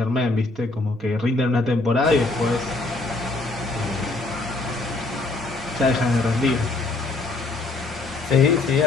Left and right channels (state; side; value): quieter; right; 3.2 dB